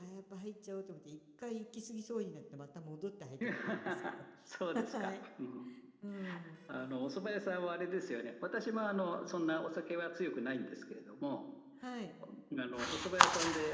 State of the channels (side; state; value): both; identical; correlation 1.00